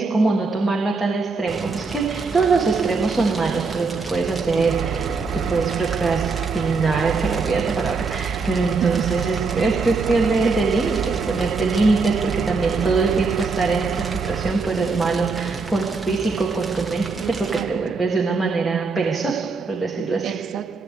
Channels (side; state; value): left; quieter; 4.2 dB